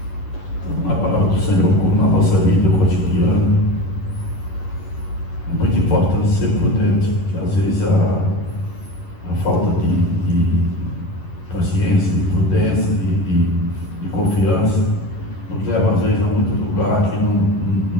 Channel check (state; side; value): late; right; 11 ms